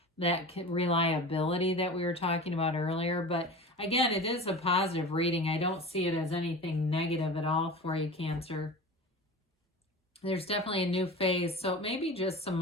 that reliability that we were talking about earlier. But again, it is a positive reading. I don't see it as anything negative at all for you, Cancer. There's definitely a new phase. So it may be just some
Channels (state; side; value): normal; both; correlation 0.33